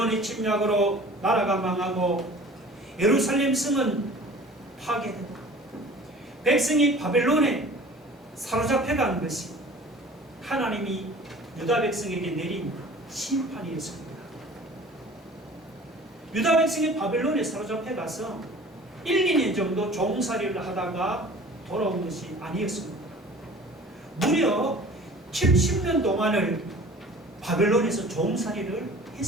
침략으로 나라가 망하고 예루살렘 성은 파괴되고 백성이 바벨론에 사로잡혀간 것이 하나님이 유다 백성에게 내린 심판이었습니다. 유다 백성이 바벨론에 사로잡혀가서 1, 2년 정도 종살이를 하다가 돌아온 것이 아니었습니다. 무려 70년 동안을 바벨론에서 종살이를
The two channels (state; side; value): normal; both; correlation 0.45